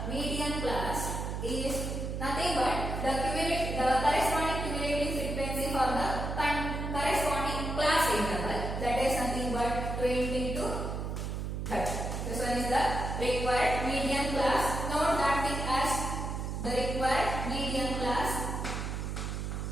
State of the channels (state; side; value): noise; right; hum, 3 dB below the sound